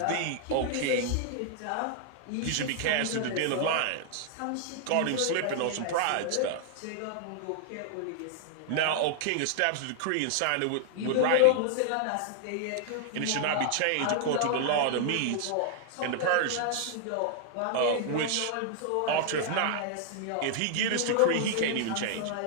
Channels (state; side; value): different; both; correlation 0.00